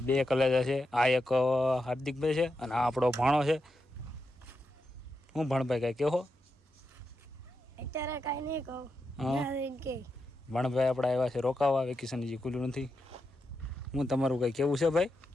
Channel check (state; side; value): normal; both; correlation 0.86